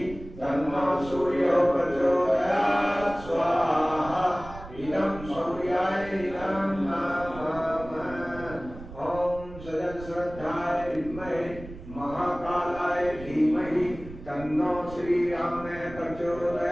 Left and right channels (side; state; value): right; noise; rumble, 15 dB below the sound